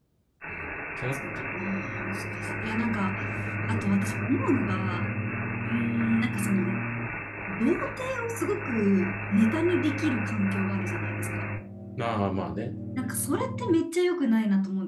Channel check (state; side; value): identical; both; correlation 1.00